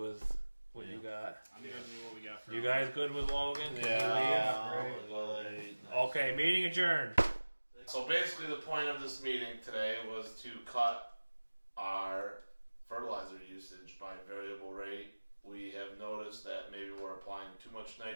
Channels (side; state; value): both; inverted; correlation -1.00